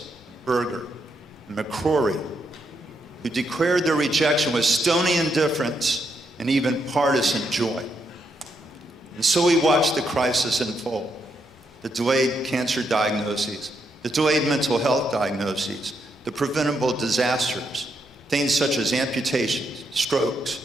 Berger, and McCrory, who declared their rejection with stony indifference and even partisan joy. And so we watched the crisis unfold, the delayed cancer diagnoses, the delayed mental health diagnoses, the preventable disasters, things such as amputations, strokes,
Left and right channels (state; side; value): normal; both; correlation 0.79